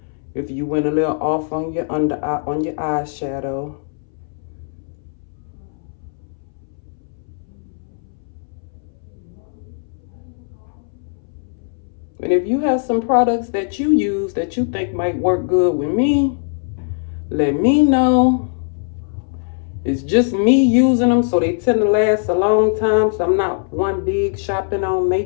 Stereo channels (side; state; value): right; silent; 62 dB below the other